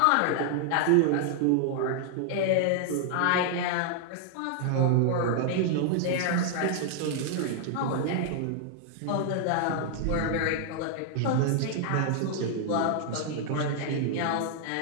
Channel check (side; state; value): both; different; correlation -0.01